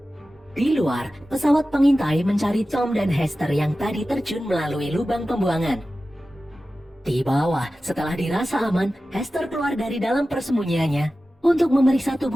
Di luar, pesawat pengintai mencari Tom dan Hester yang tadi terjun melalui lubang pembuangan. Di bawah, setelah dirasa aman, Hester keluar dari dalam persembunyiannya untuk memeriksa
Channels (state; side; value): normal; both; correlation 0.95